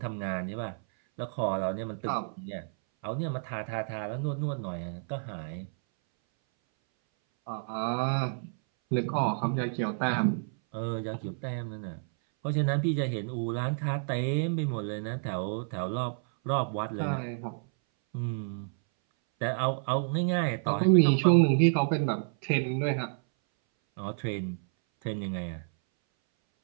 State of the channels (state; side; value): silent; left; 58 dB below the other